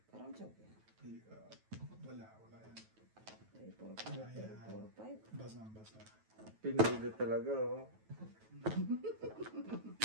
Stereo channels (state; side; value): late; left; 9.2 ms